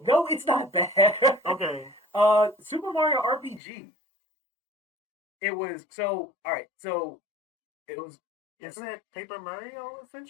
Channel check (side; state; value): right; drops out; at 3.6 s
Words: no, it's not bad. Okay. Super Mario RPG. It was so all right. So it was Isn't that Paper Mario